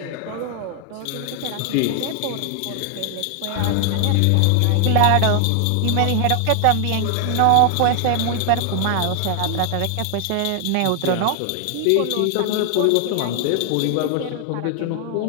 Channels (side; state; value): both; different; correlation 0.00